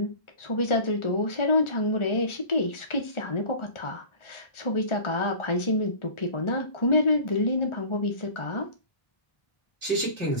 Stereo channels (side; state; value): right; late; 1.4 ms